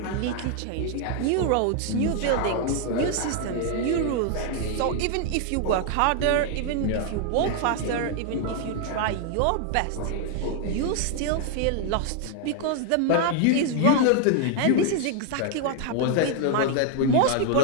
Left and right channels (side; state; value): both; different; correlation 0.00